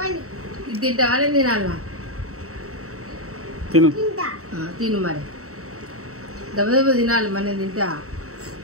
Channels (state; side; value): late; left; 0.64 ms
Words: ఇది తింటావా? నేను తినాలా? తిను మరి. దెబ్బ తినాలి మరి. నేను తింటా.